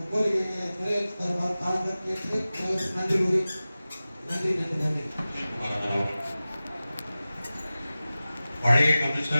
கோரிக்கையை நிறைவேற்றி தருமாறு தாழ்ந்து கேட்டு நன்றி கூறி நன்றி. பழைய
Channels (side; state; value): both; inverted; correlation -0.96